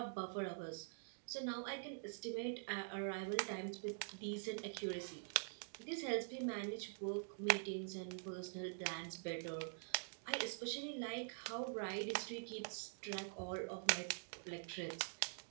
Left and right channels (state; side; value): silent; left; digital silence